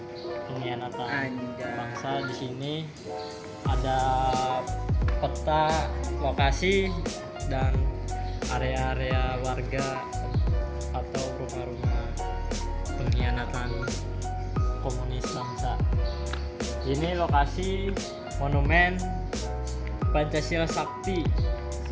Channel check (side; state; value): both; identical; correlation 1.00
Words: pengkhianatan bangsa. Di sini ada peta lokasi dan area-area warga atau rumah-rumah pengkhianatan komunis bangsa. Ini lokasi monumen Pancasila Sakti